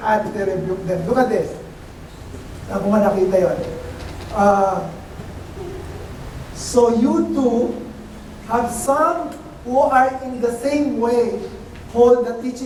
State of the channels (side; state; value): both; identical; correlation 1.00